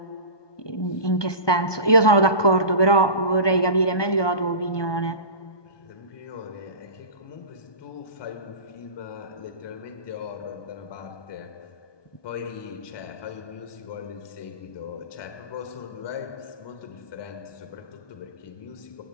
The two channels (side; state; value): right; late; 1.2 ms